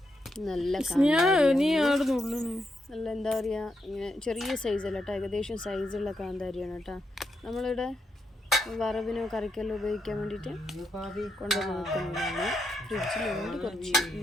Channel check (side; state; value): both; normal; correlation 0.82